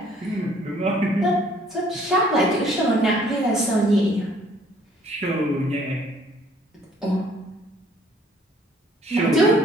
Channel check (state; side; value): normal; both; correlation 0.60